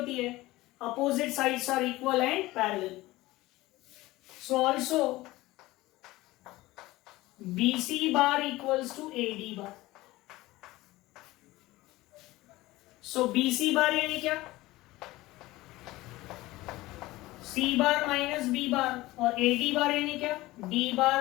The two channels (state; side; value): quieter; right; 18.7 dB